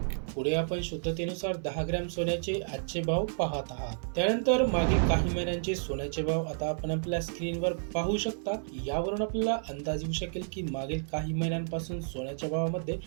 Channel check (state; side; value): silent; left; digital silence